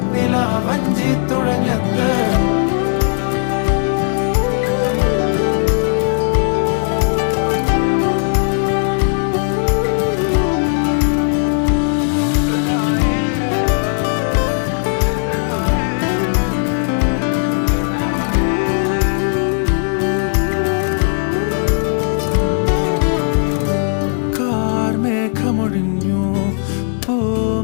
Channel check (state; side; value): silent; right; 68 dB below the other